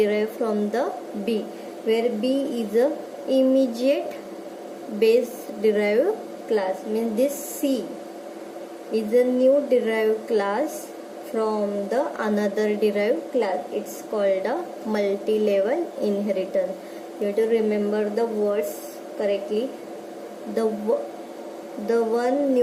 from the B, where B is a immediate base derived class, means this C is a new derived class from the another derived class. It's called a multi-level inheritance. You have to remember the words correctly. The one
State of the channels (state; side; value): identical; both; correlation 1.00